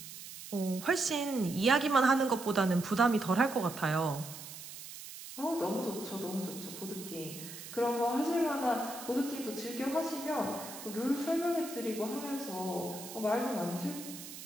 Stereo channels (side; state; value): right; noise; hiss, 12 dB below the sound